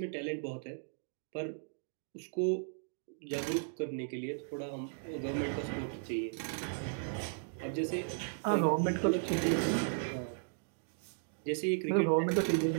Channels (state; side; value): silent; left; digital silence